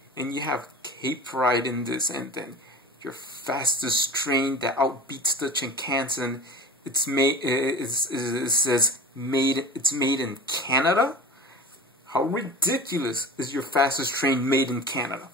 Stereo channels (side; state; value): both; normal; correlation 0.35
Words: and you have Cape Pride in this, and then your fastest train that outbeats the Shinkansen. It's made. It says made. It's made in Canada. How ridiculous is your fastest train made in Canada?